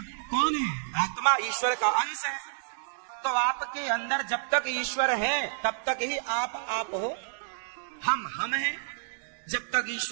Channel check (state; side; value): silent; left; digital silence